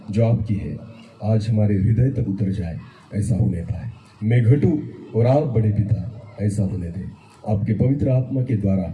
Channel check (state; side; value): identical; both; correlation 1.00